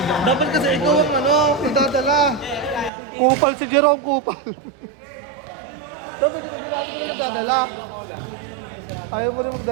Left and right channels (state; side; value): drops out; left; at 2.9 s